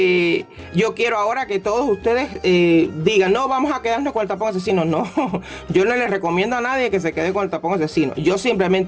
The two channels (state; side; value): identical; both; correlation 1.00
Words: yo quiero ahora que todos ustedes digan, no, vamos a quedarnos con el tapón asesino. No, yo no les recomiendo a nadie que se quede con el tapón asesino. Yo